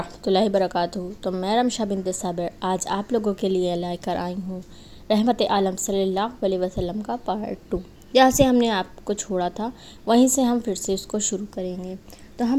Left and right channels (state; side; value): identical; both; correlation 1.00